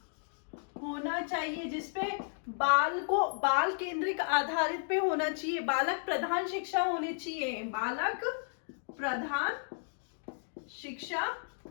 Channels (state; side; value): silent; right; digital silence